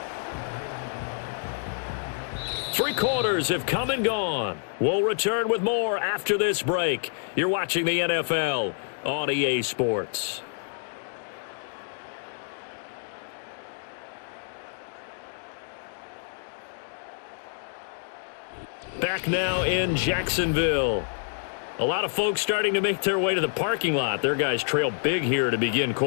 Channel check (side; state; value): right; silent; digital silence